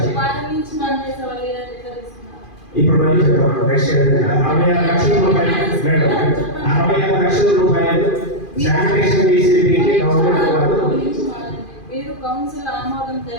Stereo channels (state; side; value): late; right; 2.5 ms